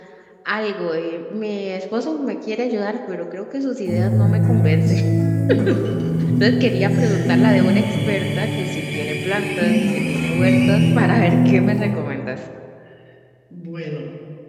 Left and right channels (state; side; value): identical; both; correlation 1.00